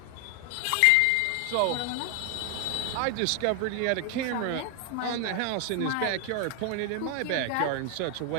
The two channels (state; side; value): different; both; correlation 0.00